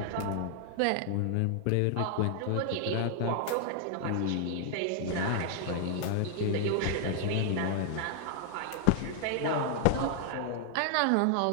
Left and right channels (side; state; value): both; different; correlation 0.00